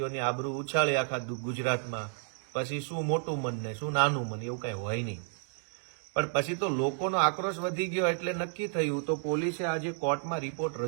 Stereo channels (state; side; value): silent; left; 57 dB below the other